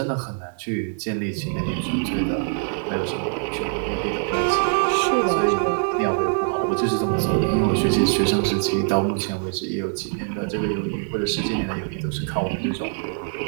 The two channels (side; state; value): left; silent; 63 dB below the other